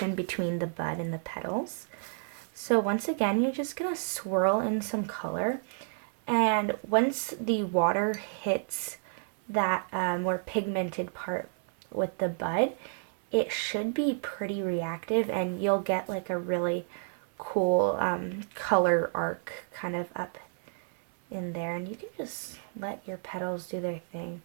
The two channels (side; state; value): left; silent; 57 dB below the other